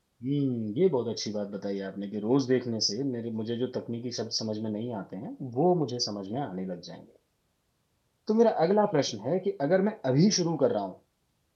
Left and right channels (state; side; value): identical; both; correlation 1.00